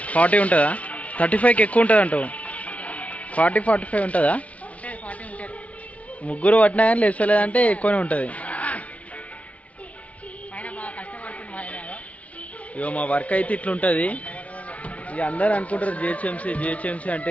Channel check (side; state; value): right; late; 0.067 ms